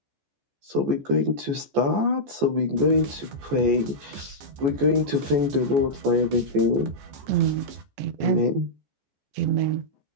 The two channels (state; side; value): late; left; 14 ms